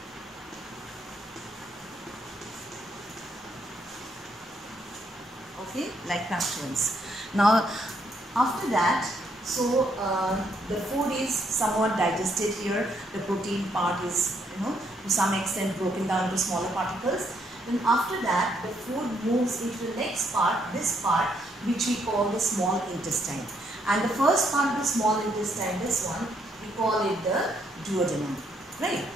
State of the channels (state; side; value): normal; both; correlation 0.73